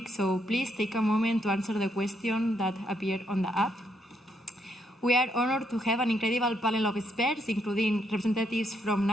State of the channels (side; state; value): both; normal; correlation 0.75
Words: so please take a moment to answer the question that appeared on the app. We are honored to have an incredible panel of experts, including representatives from